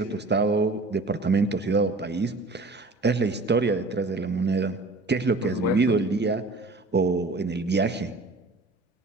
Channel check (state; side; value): quieter; left; 3.1 dB